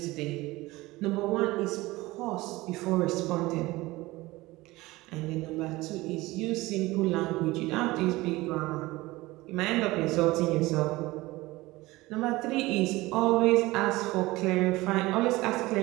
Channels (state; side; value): quieter; left; 20.0 dB